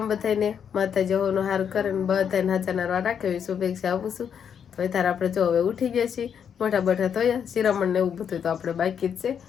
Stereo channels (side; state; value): right; quieter; 7.9 dB